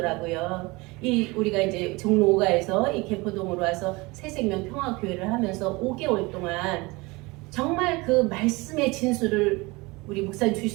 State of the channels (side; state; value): left; quieter; 23.9 dB